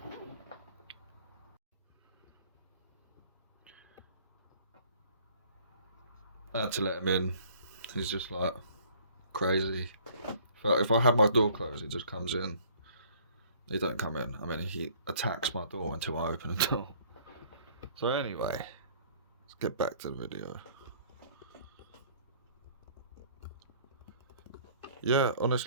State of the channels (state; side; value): inverted; both; correlation -0.55